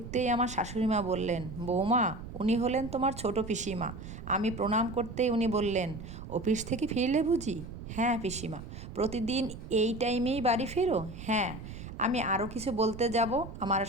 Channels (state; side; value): noise; right; rumble, 11 dB below the sound